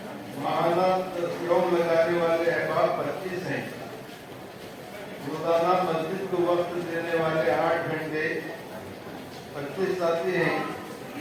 महाना तस्वीरों लगाने वाले अहबाब 25 हैं। रोजाना मस्जिद को वक्त देने वाले 8 घंटे 25 साथी हैं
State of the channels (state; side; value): identical; both; correlation 1.00